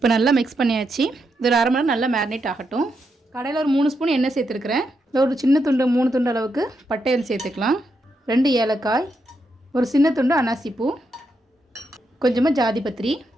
நல்லா மிக்ஸ் பண்ணியாச்சு. இது ஒரு 1/2 மணி நேரம் நல்லா மேரினேட் ஆகட்டும். கடையில் ஒரு 3 ஸ்பூன் எண்ணெய் சேர்த்துருக்குறேன். ஒரு சின்ன துண்டு 3 துண்டு அளவுக்கு பட்டையில் சேர்த்துக்கலாம். 2 ஏலக்காய், ஒரு சின்ன துண்டு அன்னாசிப்பூ, கொஞ்சமாக ஜாதிபத்திரி,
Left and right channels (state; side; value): normal; both; correlation 0.82